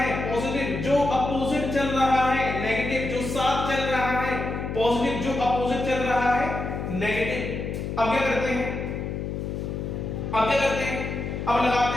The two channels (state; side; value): noise; left; hum, 4 dB below the sound